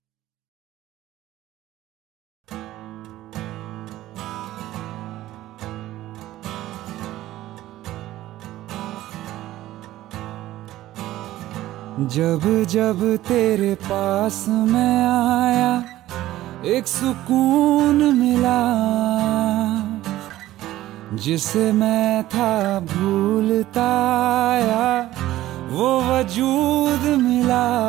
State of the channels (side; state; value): left; quieter; 15.0 dB